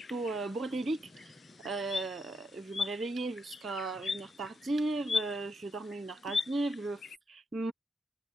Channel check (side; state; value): both; normal; correlation 0.80